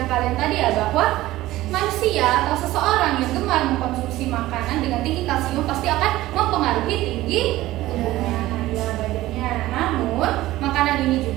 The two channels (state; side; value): quieter; left; 16.5 dB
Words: kalian tadi ya, bahwa manusia atau seseorang yang gemar mengkonsumsi makanan dengan tinggi kalsium pasti akan mempengaruhi tinggi tubuhnya, badannya. Namun makanan ini